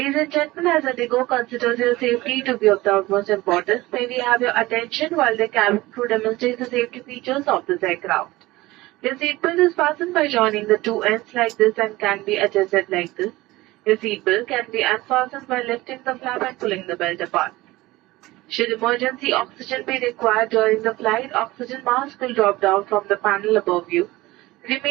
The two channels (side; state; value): left; quieter; 19.1 dB